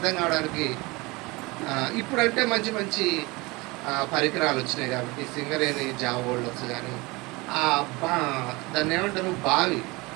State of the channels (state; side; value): quieter; left; 24.0 dB